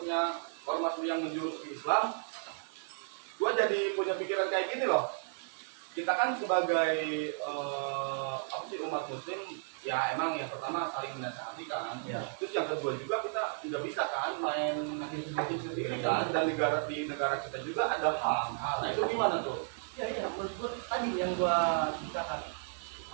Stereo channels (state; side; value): silent; left; digital silence